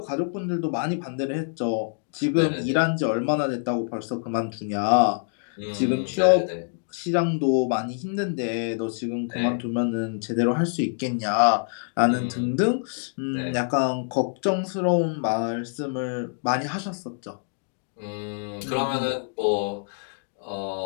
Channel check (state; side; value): silent; right; digital silence